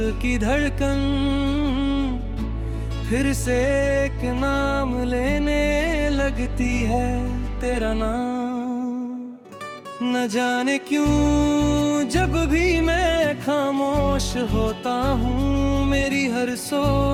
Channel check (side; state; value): both; identical; correlation 1.00